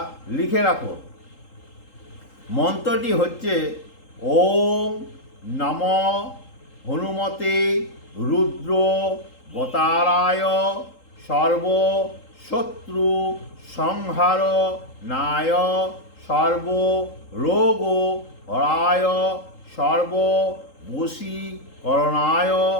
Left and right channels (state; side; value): late; right; 3.8 ms